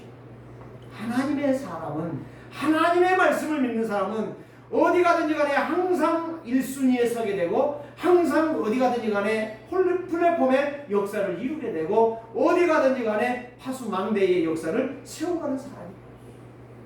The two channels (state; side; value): identical; both; correlation 1.00